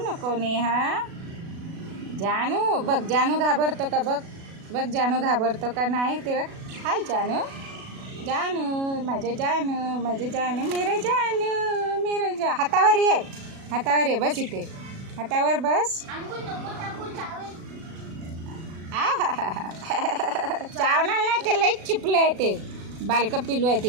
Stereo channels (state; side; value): late; left; 37 ms